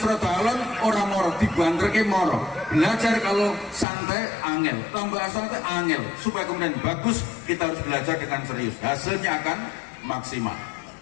alon ora moro, dibanterke moro. Belajar kalau santai angel, tambah santai angel, supaya kemudian bagus kita harus belajar dengan serius. Hasilnya akan maksimal.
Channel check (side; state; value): right; drops out; at 3.9 s